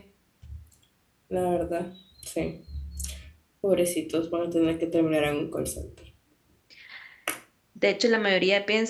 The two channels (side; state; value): both; identical; correlation 1.00